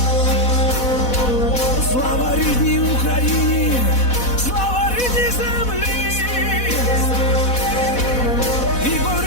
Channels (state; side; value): late; right; 4.0 ms